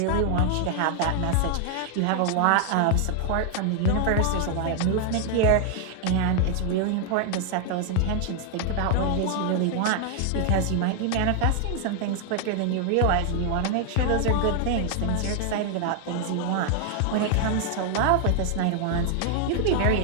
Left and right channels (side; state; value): both; different; correlation 0.00